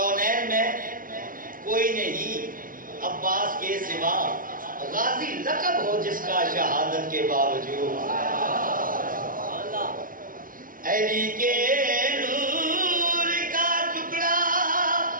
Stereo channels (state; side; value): late; left; 0.40 ms